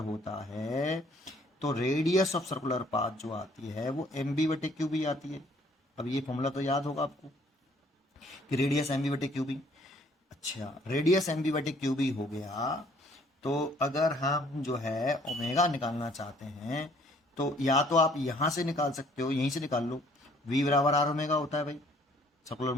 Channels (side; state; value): both; normal; correlation 0.60